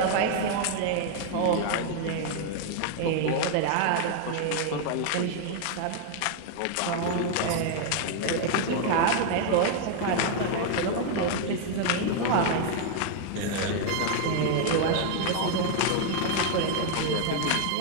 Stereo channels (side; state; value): both; different; correlation 0.00